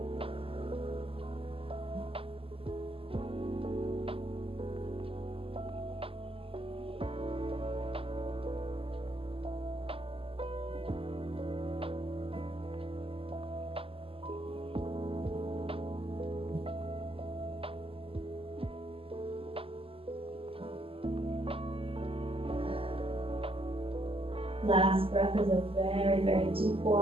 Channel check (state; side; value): late; left; 0.27 ms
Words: Last breath is a very, very deep